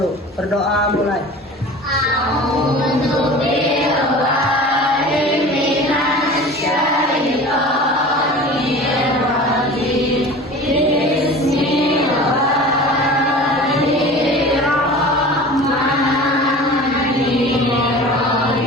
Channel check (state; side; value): normal; both; correlation 0.38